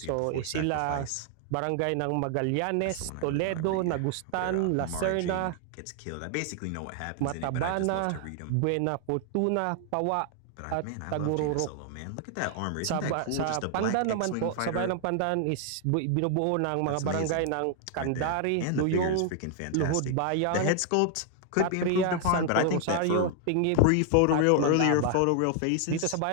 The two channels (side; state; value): both; different; correlation 0.00